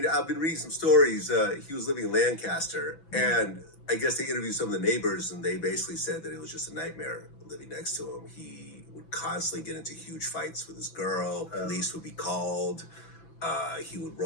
I've been reading some stories. He was living in Lancaster, and I guess they interviewed some of the neighbors, and they basically said that it was just a nightmare living next to him. He would constantly get into huge fights with his girl. Police would be called. He would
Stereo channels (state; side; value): late; right; 6.0 ms